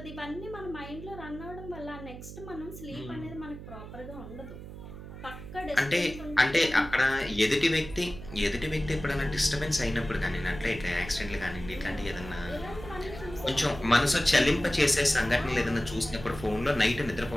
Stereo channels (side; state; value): right; noise; hum, 12 dB below the sound